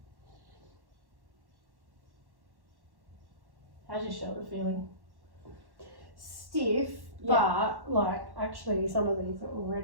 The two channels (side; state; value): left; late; 1.1 ms